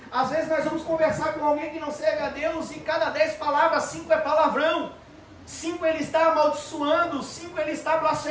às vezes nós vamos conversar com alguém que não serve a Deus, e cada 10 palavras, 5 é palavrão, 5 ele está amaldiçoando, 5 ele está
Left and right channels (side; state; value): both; identical; correlation 1.00